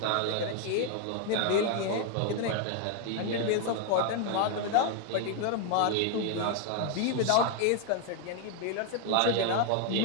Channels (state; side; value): different; both; correlation 0.00